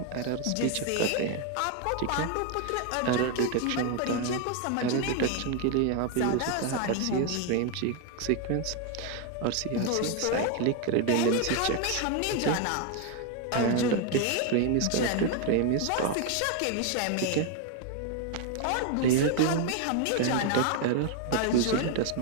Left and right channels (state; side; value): different; both; correlation 0.01